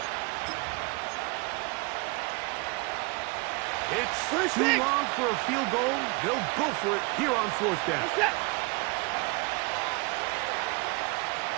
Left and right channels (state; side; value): quieter; left; 28.2 dB